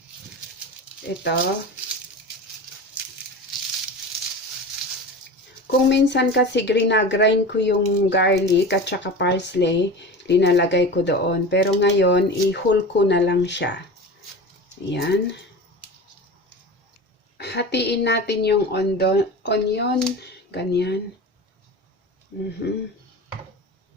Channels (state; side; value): normal; both; correlation 0.31